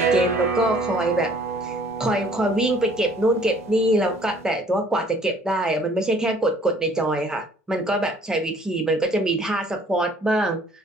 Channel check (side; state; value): both; normal; correlation 0.57